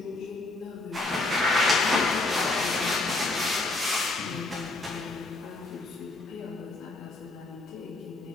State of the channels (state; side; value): quieter; right; 3.1 dB